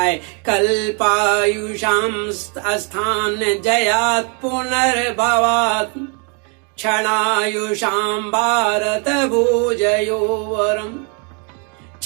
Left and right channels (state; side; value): quieter; left; 36.8 dB